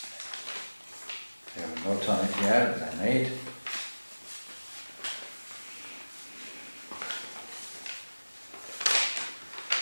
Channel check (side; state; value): both; inverted; correlation -1.00